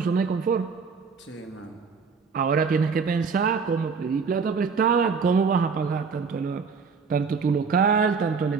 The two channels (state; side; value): quieter; left; 5.4 dB